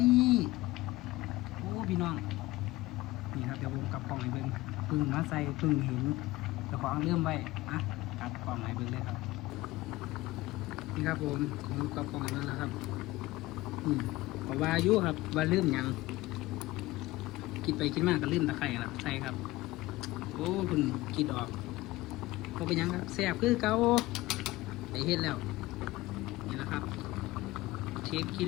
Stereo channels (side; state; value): right; quieter; 18.9 dB